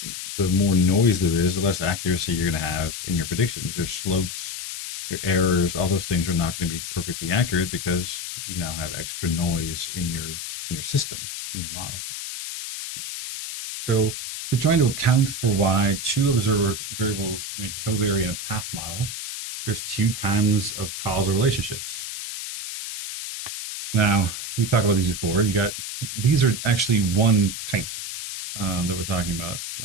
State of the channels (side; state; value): left; noise; hiss, 6 dB below the sound